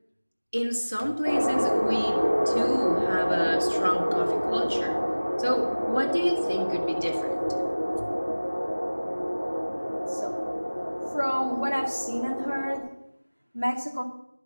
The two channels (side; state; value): both; inverted; correlation -1.00